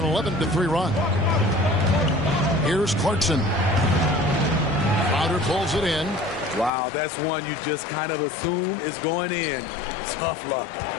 11-3 run. Here's Clarkson. Crowder pulls it in. Wow, that's one you just kind of assume is going in. Tough luck.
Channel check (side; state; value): right; drops out; at 6.7 s